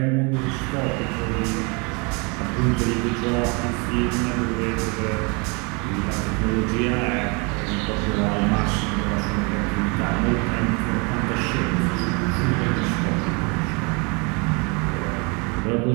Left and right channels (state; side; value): quieter; left; 30.9 dB